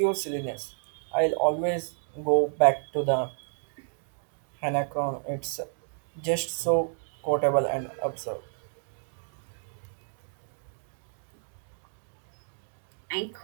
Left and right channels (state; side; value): silent; left; digital silence